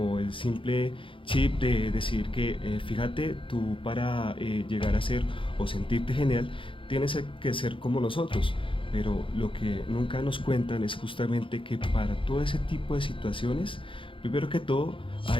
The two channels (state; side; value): late; right; 0.25 ms